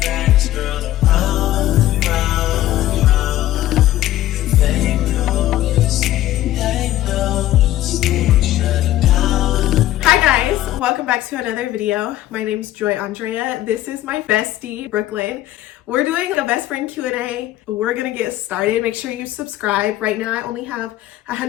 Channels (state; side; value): quieter; right; 14.3 dB